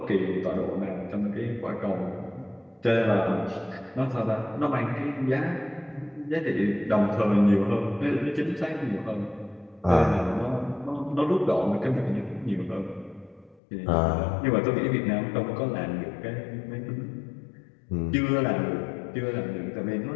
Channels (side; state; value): right; drops out; at 13.6 s